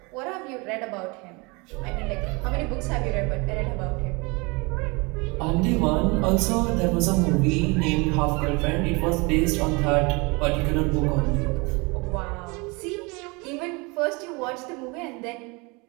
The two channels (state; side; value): quieter; left; 27.7 dB